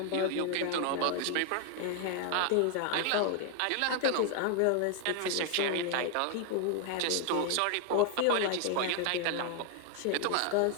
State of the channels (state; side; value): different; both; correlation 0.00